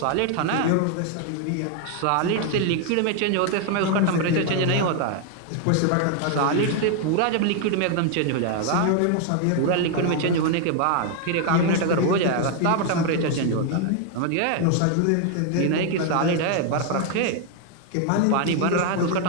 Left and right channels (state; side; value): different; both; correlation 0.01